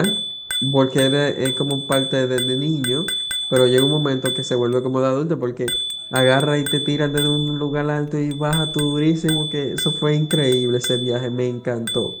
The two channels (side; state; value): both; identical; correlation 1.00